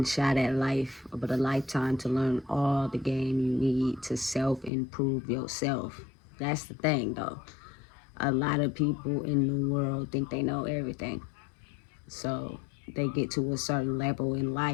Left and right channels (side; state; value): right; drops out; at 4.7 s